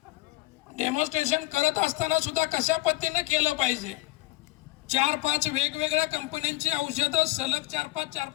डेमॉन्स्ट्रेशन करत असताना सुद्धा कशा पद्धतीने केलं पाहिजे. 4-5 वेगवेगळ्या कंपन्यांची औषधं सलग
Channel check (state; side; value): quieter; right; 19.7 dB